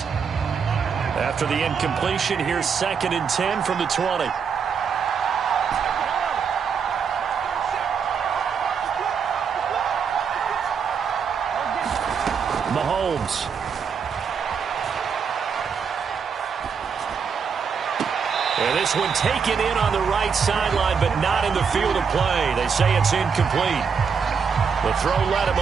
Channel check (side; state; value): left; quieter; 6.3 dB